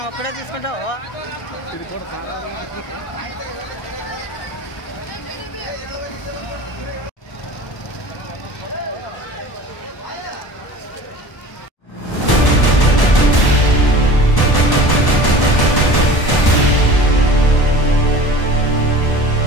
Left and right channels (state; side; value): late; right; 1.1 ms